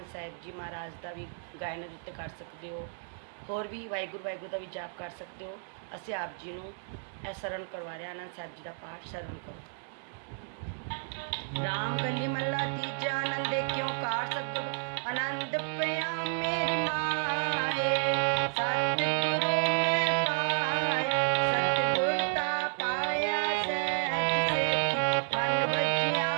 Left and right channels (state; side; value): silent; left; digital silence